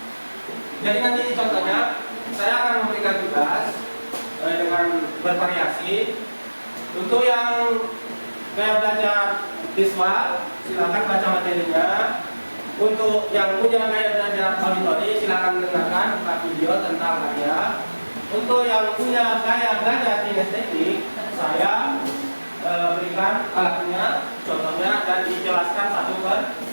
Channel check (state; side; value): inverted; both; correlation -1.00